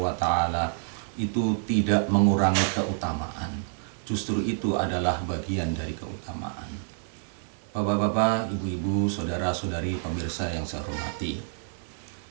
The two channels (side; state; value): left; silent; digital silence